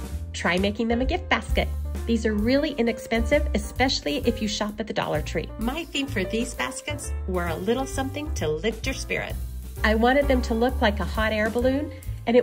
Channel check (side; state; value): both; identical; correlation 1.00